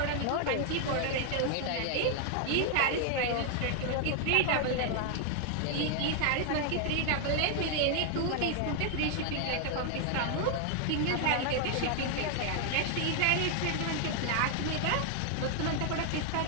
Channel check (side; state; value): both; different; correlation 0.00